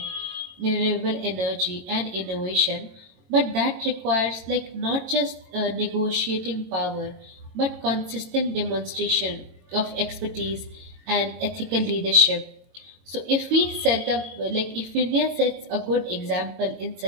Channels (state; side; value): late; left; 22 ms